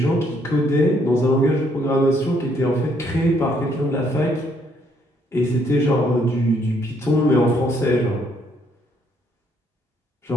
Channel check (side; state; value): both; normal; correlation 0.69